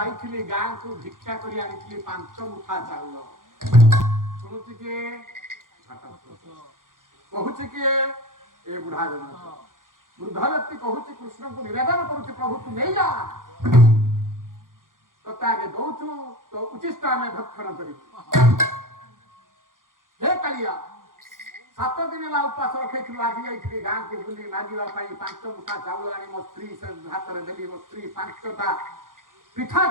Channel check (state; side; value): late; left; 0.89 ms